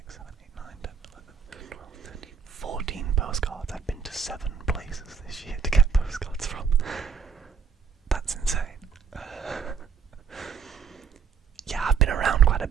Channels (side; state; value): left; quieter; 6.4 dB